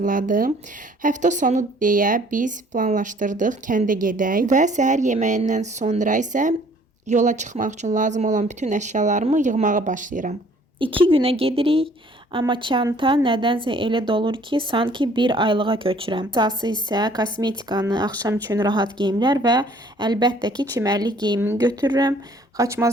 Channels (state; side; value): normal; both; correlation 0.57